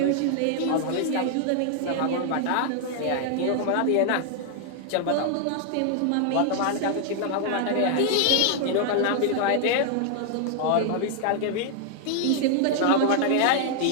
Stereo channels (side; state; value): both; different; correlation 0.00